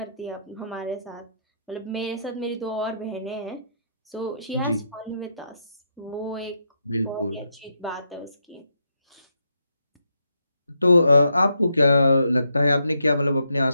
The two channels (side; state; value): both; inverted; correlation -0.79